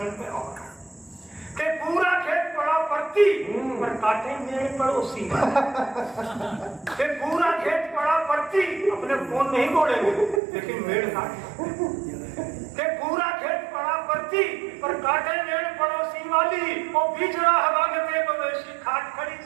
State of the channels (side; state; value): left; drops out; at 10.4 s